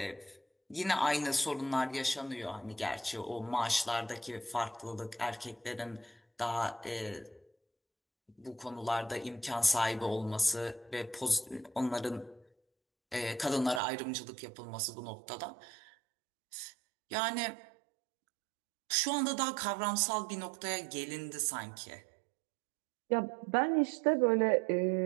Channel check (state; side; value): drops out; left; at 13.8 s